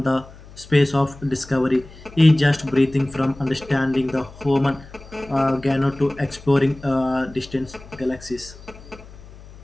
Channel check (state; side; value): noise; left; hum, 19 dB below the sound